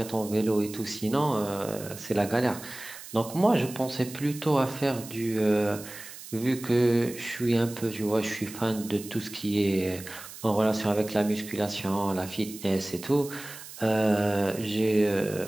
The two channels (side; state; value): right; noise; hiss, 14 dB below the sound